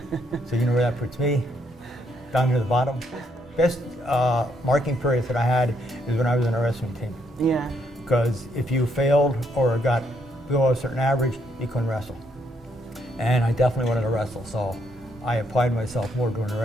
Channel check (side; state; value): both; normal; correlation 0.73